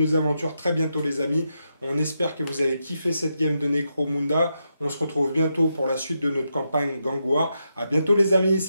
aventures très bientôt, les amis. On espère que vous avez kiffé cette game de Necromunda. On se retrouve bientôt pour la suite de notre campagne Gang War. À bientôt, les amis.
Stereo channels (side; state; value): both; inverted; correlation -0.84